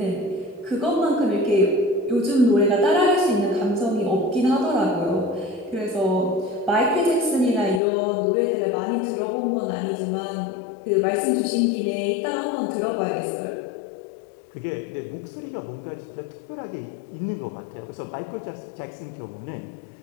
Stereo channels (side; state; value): right; drops out; at 7.8 s